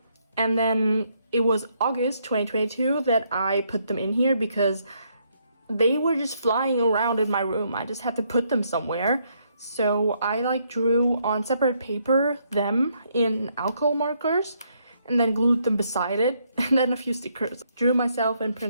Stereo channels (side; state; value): both; inverted; correlation -0.73